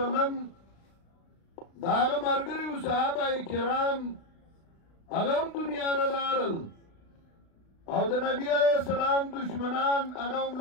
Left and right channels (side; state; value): right; late; 36 ms